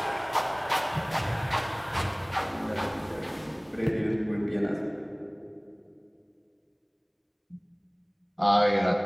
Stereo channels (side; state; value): both; identical; correlation 1.00